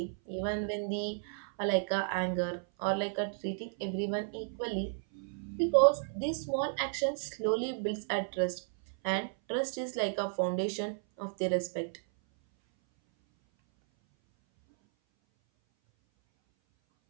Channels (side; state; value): left; silent; 56 dB below the other